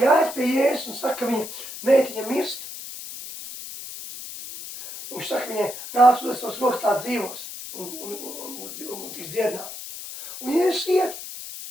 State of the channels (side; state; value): left; noise; hiss, 11 dB below the sound